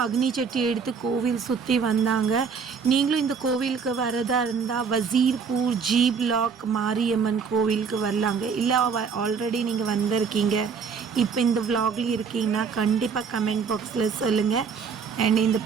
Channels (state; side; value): quieter; left; 6.0 dB